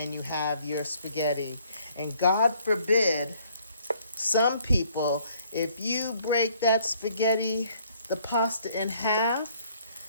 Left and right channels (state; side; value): inverted; both; correlation -0.63